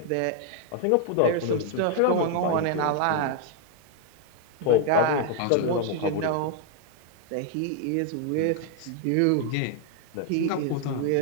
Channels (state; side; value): different; both; correlation 0.00